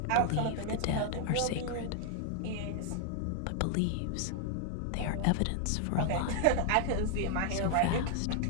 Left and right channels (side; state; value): both; different; correlation 0.00